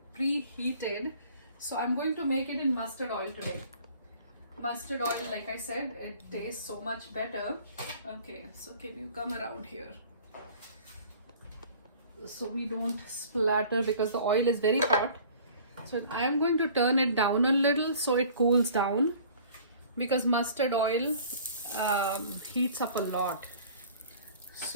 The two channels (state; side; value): inverted; both; correlation -0.49